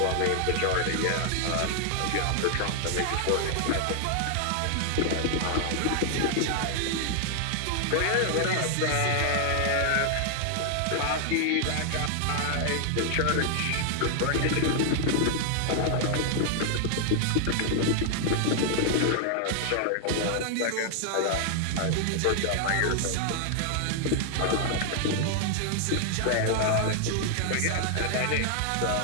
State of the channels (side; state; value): both; different; correlation 0.00